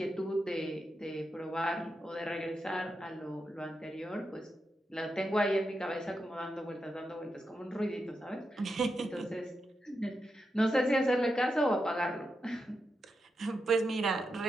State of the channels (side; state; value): both; normal; correlation 0.87